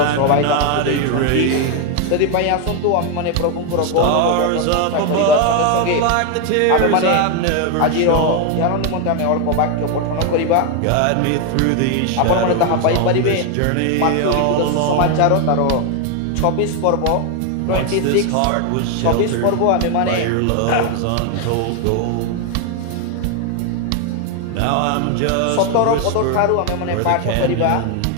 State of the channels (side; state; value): both; different; correlation 0.01